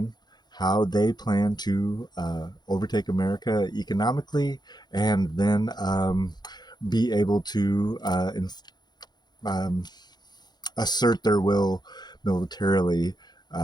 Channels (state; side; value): late; right; 0.20 ms